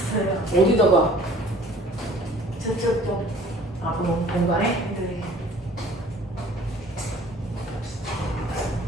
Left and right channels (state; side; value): normal; both; correlation 0.51